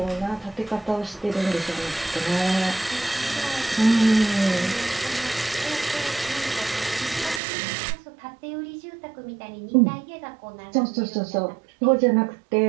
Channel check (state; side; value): drops out; left; at 7.4 s